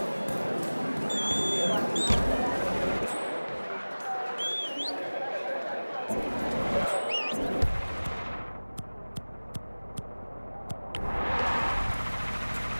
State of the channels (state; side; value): inverted; both; correlation -1.00